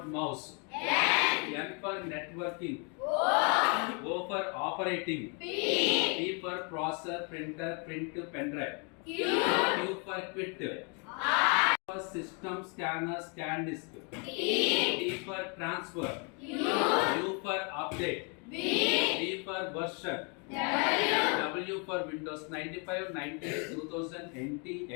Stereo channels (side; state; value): right; quieter; 35.6 dB